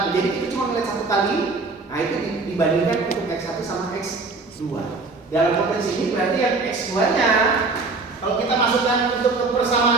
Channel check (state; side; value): quieter; left; 3.8 dB